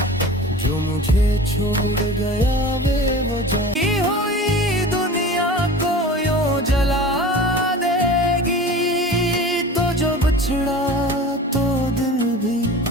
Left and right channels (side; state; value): both; normal; correlation 0.38